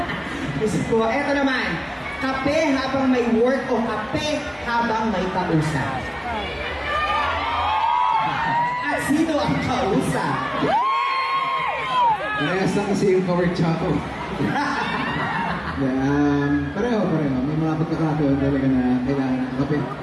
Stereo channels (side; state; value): both; identical; correlation 1.00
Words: Gusto ko, eto naman, kape habang may work o kape habang may kausap? At sino ang kausap? Parehas lang kasi yung power choco. Pareho. May mga pagkakataon talaga na kailangan ng kape.